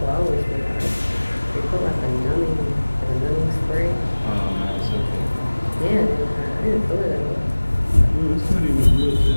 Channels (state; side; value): inverted; both; correlation -1.00